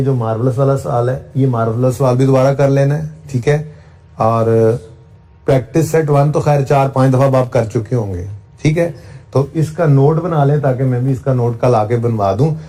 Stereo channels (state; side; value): identical; both; correlation 1.00